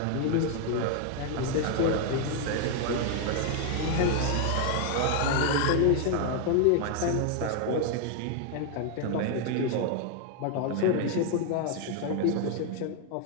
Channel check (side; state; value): both; different; correlation 0.00